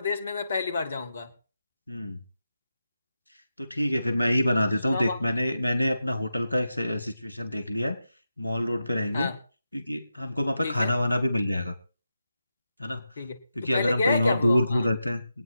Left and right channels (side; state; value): both; inverted; correlation -0.89